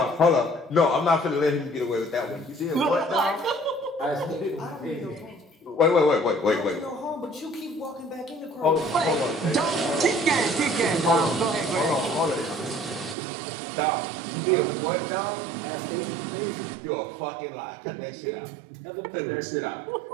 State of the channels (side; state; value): left; drops out; at 13.2 s